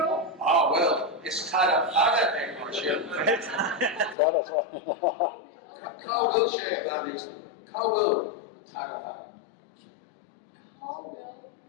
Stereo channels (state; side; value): drops out; right; at 4.2 s